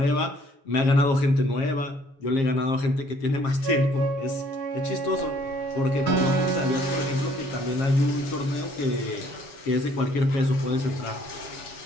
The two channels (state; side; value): late; right; 7.4 ms